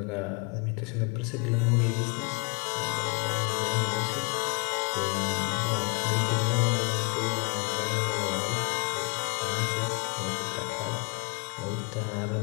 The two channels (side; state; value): right; quieter; 33.0 dB